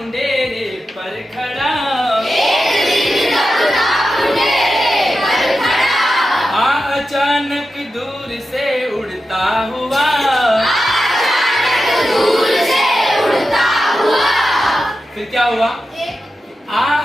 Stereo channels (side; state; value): both; normal; correlation 0.91